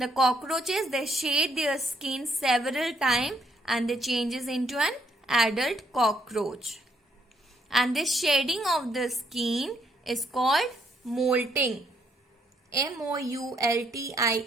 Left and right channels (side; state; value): both; normal; correlation 0.72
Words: cockroaches, they shed their skin several times and they changes into an adult cockroach. And this shedding of the skin is called molting. M-O-U-L-T-I-N-G,